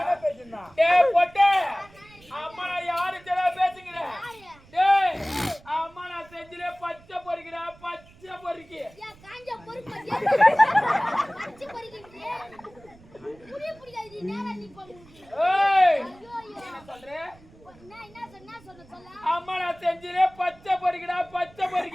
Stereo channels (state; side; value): noise; right; rumble, 25 dB below the sound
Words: பேசுனா. டேய் பொட்டே. அம்மா நான் யாரு தெரிய பேசுங்கற? டேய் அம்மா நான் செஞ்சிலே பச்சை பொரிக்கிறா பச்சை பொரிக்கி. ஏன் காஞ்ச பொறுப்பு பச்சை பொரிக்கிறீங்க? புடிக்காது நேரா நீ போங்க. ஏய் ஐயோ என்ன சொல்ற? என்ன சொல்ல அம்மா நான் செஞ்சிலே பச்சை பொரிக்கிறா பச்சை